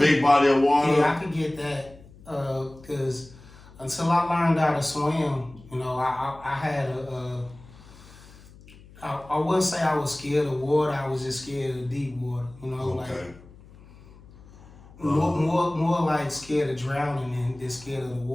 body of water. Yeah, I could get that, because until I learned how to swim, you know, I had I wouldn't say I was scared of water. I was just scared of deep water. You know, okay. Like more like scared of drowning than scared of the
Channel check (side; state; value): left; noise; hum, 22 dB below the sound